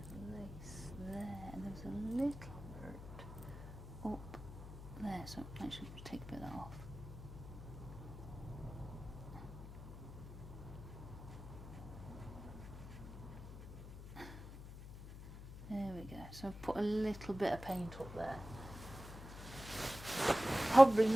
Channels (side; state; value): left; noise; hum, 12 dB below the sound